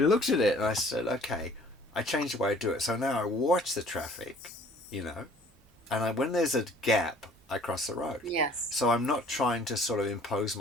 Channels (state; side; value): normal; both; correlation 0.54